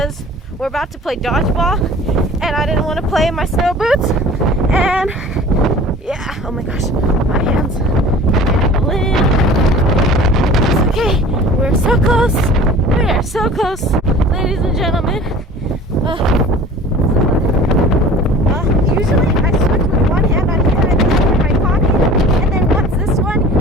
we're about to play dodgeball and I didn't want to play in my snow boots. And yeah, oh my gosh, my hands are limp. It's okay, we're so close. We're so close, ladies and gentlemen. Usually I switch with one hand on here and then in my pocket, and then once this one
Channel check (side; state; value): both; normal; correlation 0.44